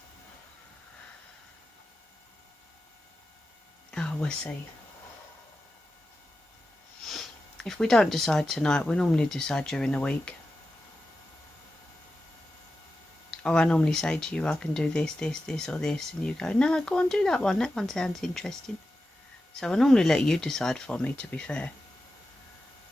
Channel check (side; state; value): both; normal; correlation 0.92